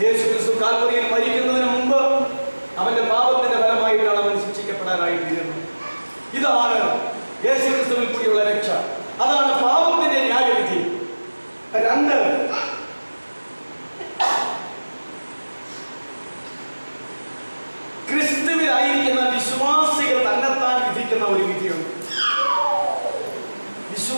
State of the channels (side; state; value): both; inverted; correlation -1.00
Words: യേശു ക്രിസ്തു കാൽവറിയിൽ മരിക്കുന്നതിന് മുമ്പ് അവന്റെ പാപത്തിന്റെ ഫലമായിട്ടാണ് അവൻ ശിക്ഷിക്കപ്പെടാനായി തീരുന്നത്. ഇതാണ് യേശു ക്രിസ്തുവിൽ കൂടിയുള്ള രക്ഷ. അതാണ് പാപത്തിന്റെ ന്യായവിധി. 2, ക്രിസ്തുവിലായിരിക്കുന്ന വിശ്വാസികൾ തന്നെത്താൻ വിധിക്കുന്ന ഒരു വിധിയുണ്ട്.